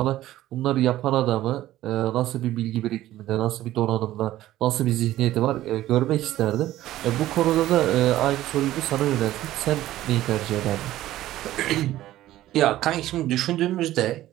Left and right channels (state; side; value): quieter; left; 14.6 dB